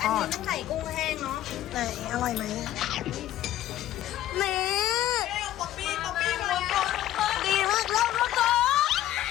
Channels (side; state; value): right; quieter; 13.4 dB